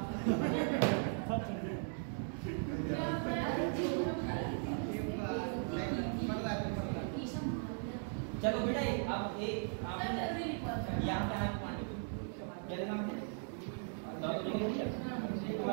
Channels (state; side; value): silent; left; 52 dB below the other